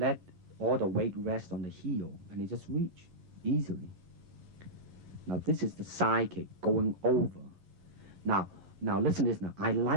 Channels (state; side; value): late; left; 11 ms